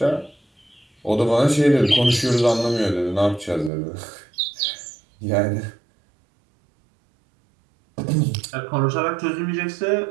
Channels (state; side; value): drops out; left; at 3.7 s